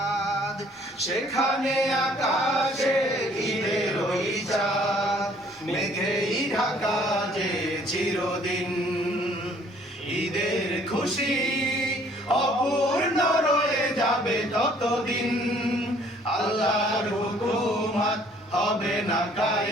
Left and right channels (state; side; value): normal; both; correlation 0.59